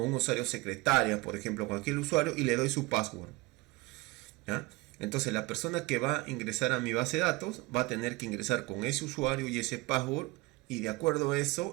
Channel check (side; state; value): left; quieter; 22.8 dB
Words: un usuario secretaria, por ejemplo, cualquier usuario, y le doy su password, ¿ya? Entonces la persona que va a ingresar a mi base de datos va a tener que ingresar con ese usuario y ese password, y de acuerdo a